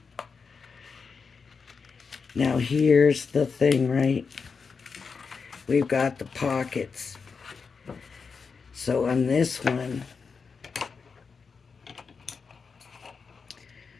Now here's the thing, right? We've got the pockets. So on this one,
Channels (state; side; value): quieter; right; 5.3 dB